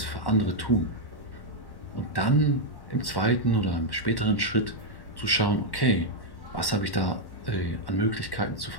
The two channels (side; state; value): right; late; 1.1 ms